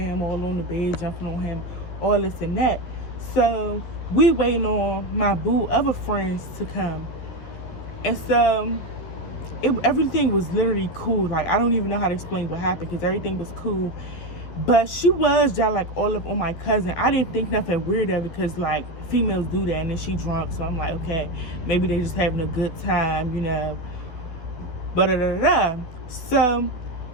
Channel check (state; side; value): late; right; 12 ms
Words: all on the bed, jumping on him, all this and that. So we waiting on my boo other friends to come. And so everything was literally cool. Like, I don't even know how to explain what happened, because everything was cool. But she was just like all up on my cousin. I didn't think nothing weird of it, because like females do that, and then she drunk. So I'm like, okay, maybe they just having a good time, you know. So